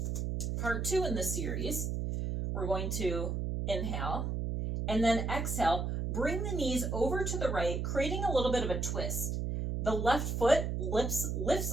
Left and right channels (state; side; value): noise; right; hum, 1 dB below the sound